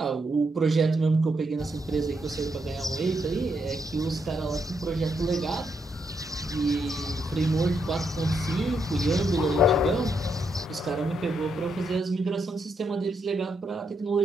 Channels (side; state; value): both; normal; correlation 0.79